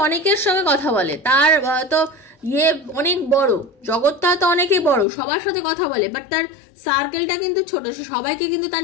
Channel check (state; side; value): drops out; right; at 5.1 s